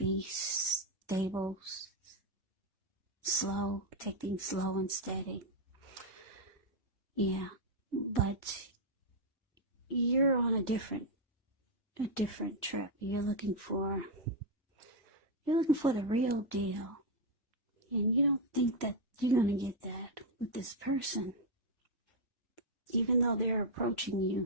stable, slow, take things slow and steady. Yeah, but you're on a different trip. You're looking for the real deal. And you don't think that you're going to get that with this person. Even though they're approaching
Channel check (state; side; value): normal; both; correlation 0.00